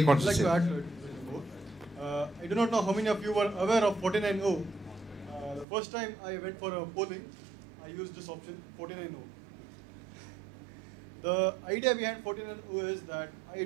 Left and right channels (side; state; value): left; drops out; at 5.7 s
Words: wants to say. I'd like to add to it. I do not know how many of you were aware of 49O. The first time I went for a polling, I used this option, 49O. The idea behind 49O is that I